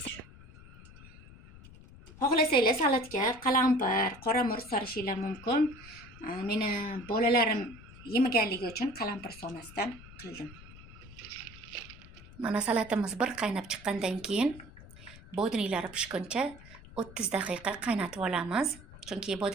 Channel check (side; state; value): left; noise; rumble, 19 dB below the sound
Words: xohlasanglar salatga qalampir, qora murch solishinglar mumkin. Meni bolalarim yemaganligi uchun qalampir solmasdan qildim. Mana salatimiz bir qaynab chiqqandan keyin bodringlari pishguncha 30 daqiqa qaynatib olamiz. Chunki